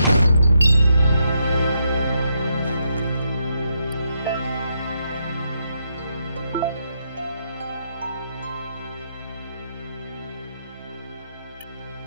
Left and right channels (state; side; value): inverted; both; correlation -0.80